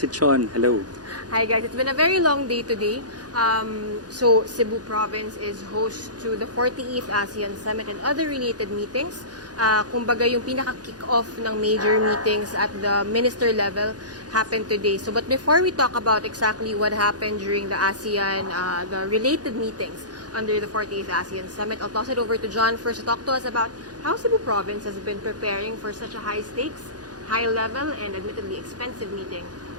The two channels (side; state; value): left; late; 0.69 ms